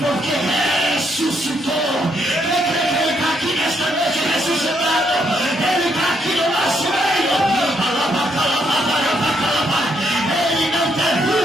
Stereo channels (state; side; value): normal; both; correlation 0.74